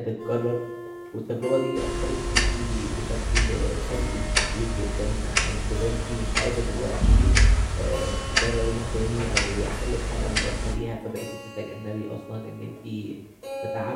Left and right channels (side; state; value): both; identical; correlation 1.00